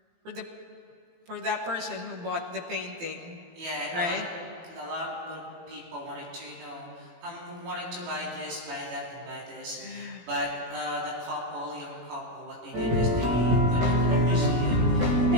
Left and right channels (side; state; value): left; late; 18 ms